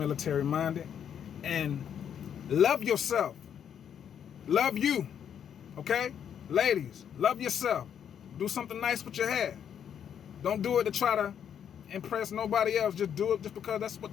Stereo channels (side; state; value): right; quieter; 8.6 dB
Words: minded, and love yourself. Love you. Okay? Ladies, love yourself. Do something nice with your hair. Don't do it to try to impress nobody else. Just do it just because that's what